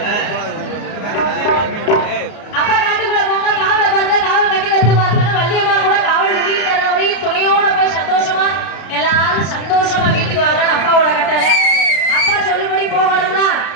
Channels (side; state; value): right; late; 33 ms